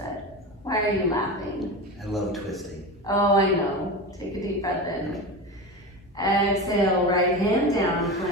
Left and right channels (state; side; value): normal; both; correlation 0.25